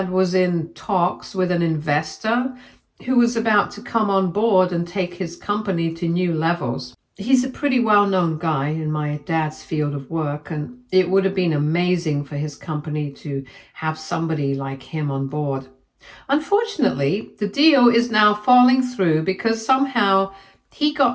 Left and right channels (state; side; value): identical; both; correlation 1.00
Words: was in talks with an investor who was about to come on board and take his company to new levels. He's a pretty well-known guy in my dad's field of work, and it would have been amazing for his company to have somebody like him on board. Unfortunately, the deal is now falling through because somehow he